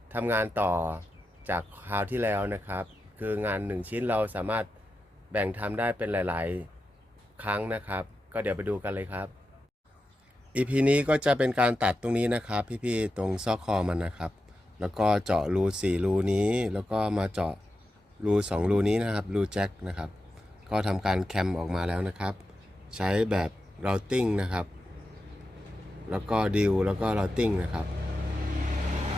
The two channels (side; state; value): both; normal; correlation 0.90